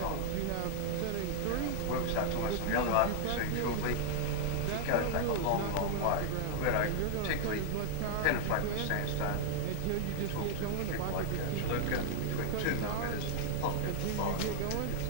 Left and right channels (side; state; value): both; different; correlation 0.00